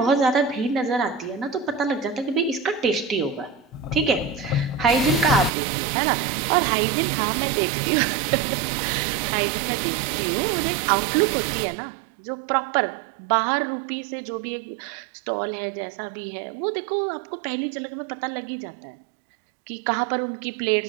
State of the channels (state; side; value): drops out; left; at 5.5 s